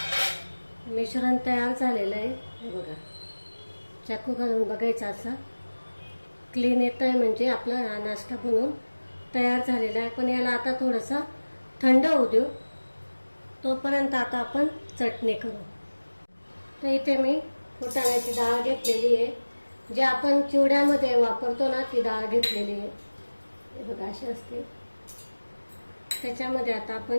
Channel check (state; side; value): inverted; both; correlation -1.00